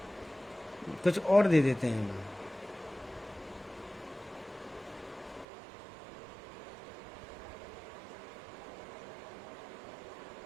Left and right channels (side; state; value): left; drops out; at 5.5 s